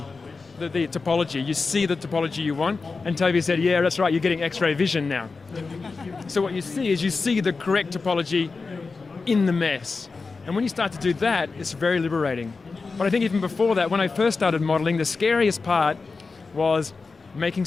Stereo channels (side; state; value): right; quieter; 4.3 dB